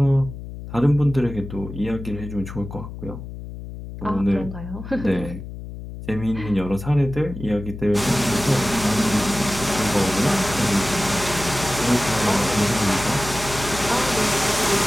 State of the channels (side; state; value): left; noise; hum, 11 dB below the sound